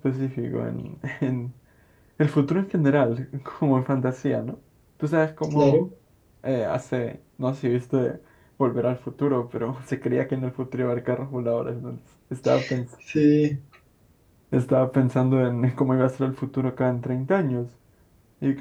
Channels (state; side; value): identical; both; correlation 1.00